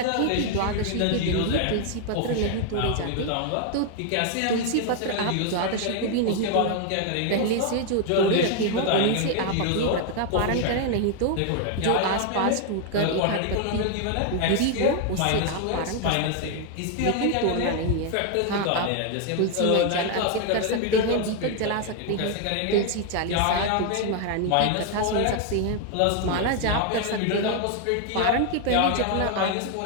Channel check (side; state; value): both; different; correlation 0.00